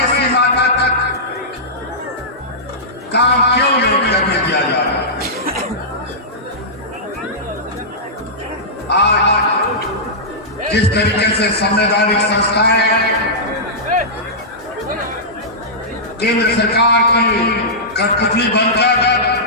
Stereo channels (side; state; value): both; normal; correlation -0.14